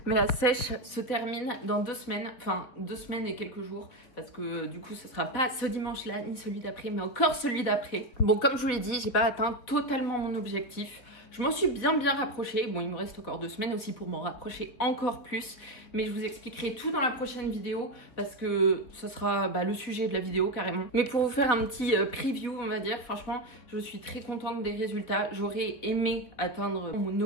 mais la sèche se termine dans 2 semaines, enfin 2 semaines et quelques jours, parce que du coup ce sera pas ce dimanche-là, ni celui d'après, mais encore celui d'après. Bon, comme je vous l'ai dit, j'ai pas atteint totalement mon objectif. Je m'en suis bien rapprochée. Bon, il me reste encore 2 semaines aussi pour m'en rapprocher encore plus. Mais je vous expliquerai tout dans la prochaine vidéo parce que ça sera le sujet de la vidéo carrément. Mais pour vous faire un petit preview, on va dire, franchement, je suis très contente des résultats. J'aurais aimé atteindre mon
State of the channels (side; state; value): right; late; 4.3 ms